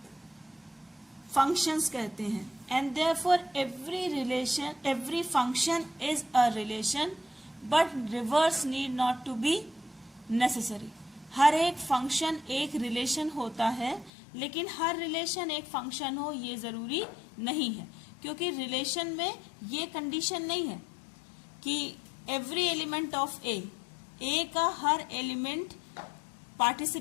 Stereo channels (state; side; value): drops out; right; at 14.1 s